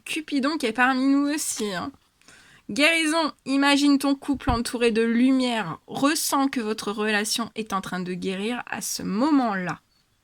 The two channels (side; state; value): both; identical; correlation 1.00